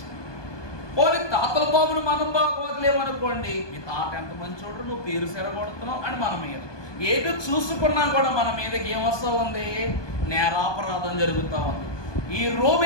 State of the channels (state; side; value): late; right; 1.2 ms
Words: పోనీ తాతల బాబును మనం బాగోలేమనుకోండి, మీ తాత ఎంత మంచోడు, నువ్వు పేరు సెరగొడుతున్నావు అని మన మీద ఏదో చూసుకున్నా కూడా మన మీదకి ఏమొస్తా ఉంది? నేరాపరాధం జరుగుతూ ఉంది. ఈ